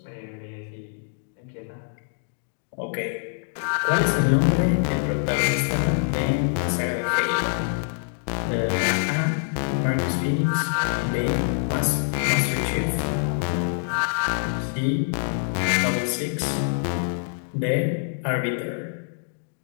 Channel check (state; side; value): silent; right; 59 dB below the other